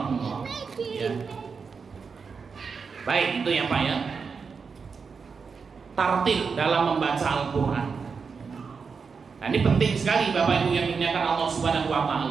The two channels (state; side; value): quieter; left; 5.4 dB